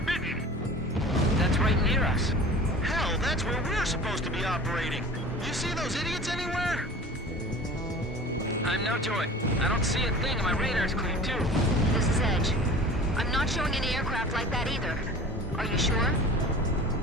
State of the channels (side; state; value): both; normal; correlation 0.40